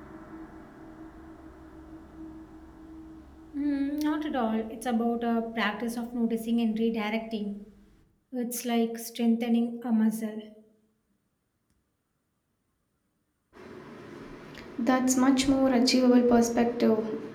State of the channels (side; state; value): both; identical; correlation 1.00